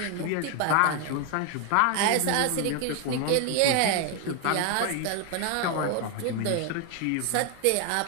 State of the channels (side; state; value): both; different; correlation 0.01